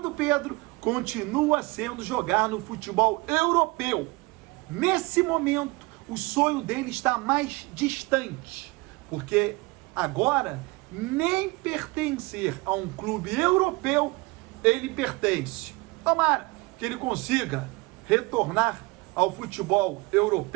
do Pedro continua sendo jogar no futebol europeu. Nesse momento, o sonho dele está mais distante, porque agora nem pertencer a um clube europeu ele pertence. Tomara que ele consiga retornar ao futebol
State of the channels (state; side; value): quieter; left; 24.1 dB